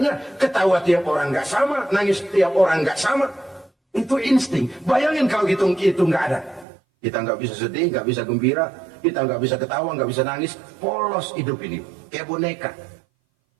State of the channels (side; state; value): left; drops out; at 6.7 s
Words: ketawa tiap orang nggak sama, nangis tiap orang nggak sama. Itu insting. Bayangin kalau itu nggak ada. Kita nggak bisa sedih, nggak bisa gembira, kita nggak bisa ketawa, nggak bisa nangis. Polos hidup ini, kayak boneka.